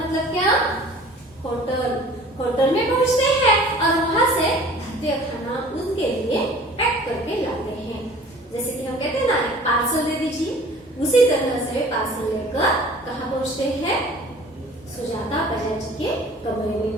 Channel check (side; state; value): both; normal; correlation 0.47